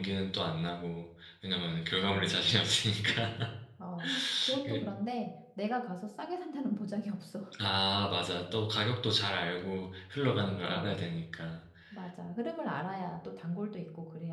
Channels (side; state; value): both; identical; correlation 1.00